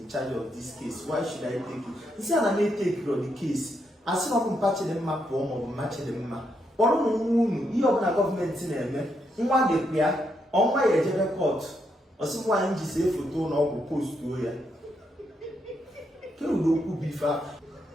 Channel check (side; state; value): both; normal; correlation 0.79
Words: in charge of this case why should I take it nsị a na na-etake the case asị na ọkụ mpa Chidimma pụọ maọbụ mma Chidimma kpọrọ ụmụ nwa unu ihe ọbụla gọọmenti na-eme nwa ga-ekpe ya ọnwa ya ejebe kọtụ ọsị nwaanyị ji see foto ụlọ ọgwụ postuo ya kerudo okwu bụ ife